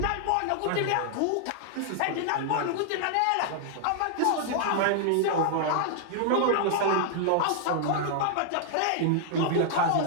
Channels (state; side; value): different; both; correlation -0.01